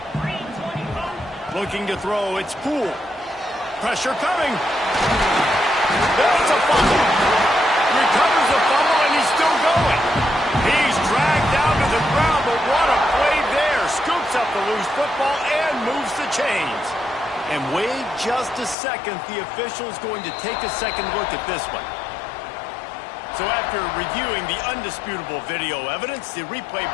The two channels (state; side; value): drops out; right; at 18.8 s